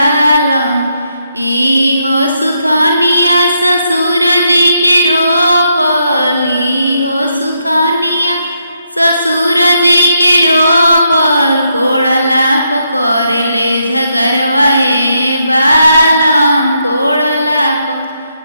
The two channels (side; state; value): both; inverted; correlation -0.79